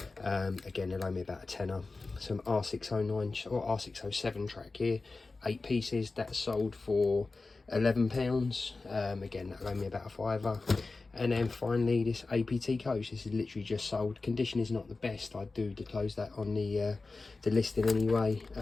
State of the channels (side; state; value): right; quieter; 3.7 dB